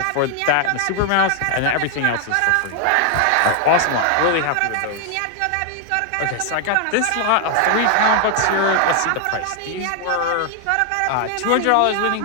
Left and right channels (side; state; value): both; different; correlation 0.00